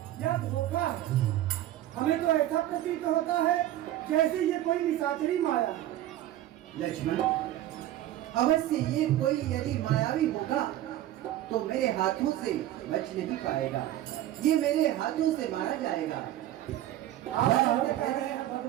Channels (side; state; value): left; quieter; 13.5 dB